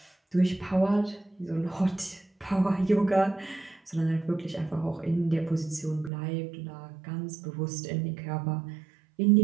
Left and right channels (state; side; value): drops out; left; at 6.1 s